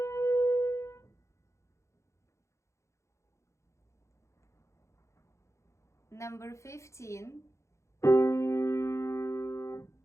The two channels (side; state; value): right; late; 0.14 ms